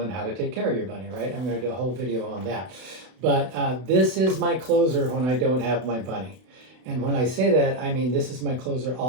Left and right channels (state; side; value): late; left; 32 ms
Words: how to take care of your bunny, right? I'm going to do a whole video on that. But this is my closer when I don't have my bunny. And when I say that, I mean this is my closer